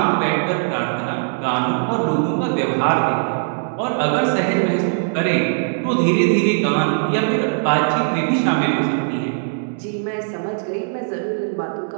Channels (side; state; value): left; silent; digital silence